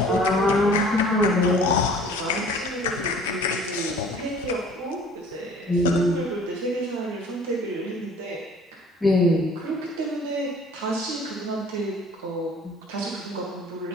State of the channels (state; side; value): normal; both; correlation 0.50